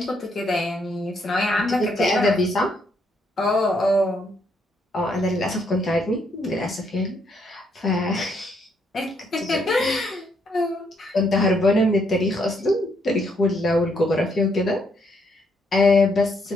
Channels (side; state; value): both; normal; correlation 0.73